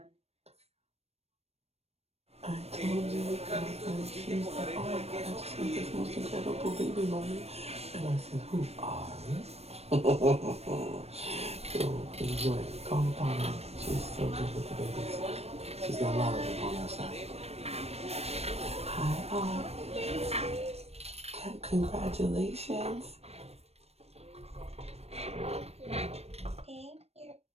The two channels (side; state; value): left; late; 0.30 ms